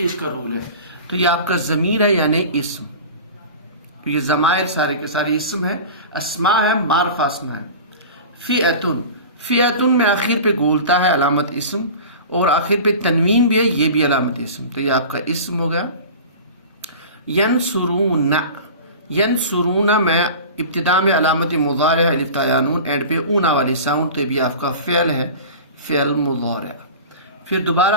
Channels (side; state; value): both; inverted; correlation -0.36